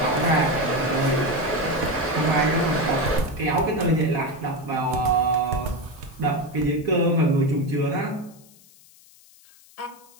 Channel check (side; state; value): left; noise; hiss, 26 dB below the sound